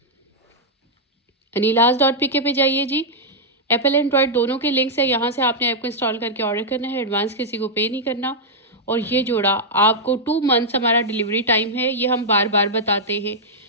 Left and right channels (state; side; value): normal; both; correlation -0.06